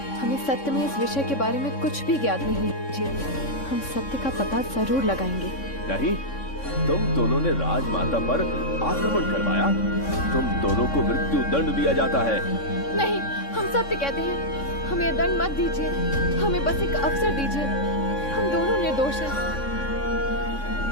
हमें सत्य में इस विषय के बारे में कुछ भी ज्ञात नहीं है जी। हम सत्य का पता जरूर लगाएंगे। नहीं, तुम दोनों ने राजमाता पर आक्रमण करवाया। तुम दोनों को मृत्यु दंड दिया जाता है। नहीं, हम सत्य कहते हैं। हमें दंड मत दीजिए, हमें बस एक अवसर दीजिए। हम दोनों निर्दोष हैं।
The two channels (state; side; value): late; right; 3.6 ms